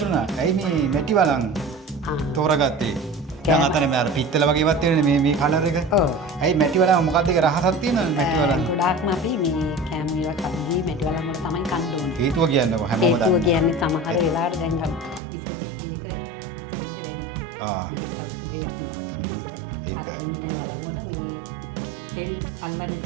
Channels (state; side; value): drops out; left; at 15.2 s